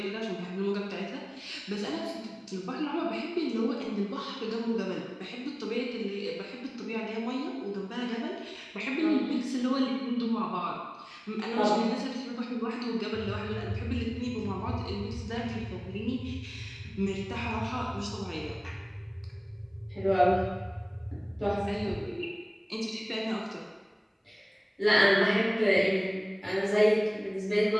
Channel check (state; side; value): identical; both; correlation 1.00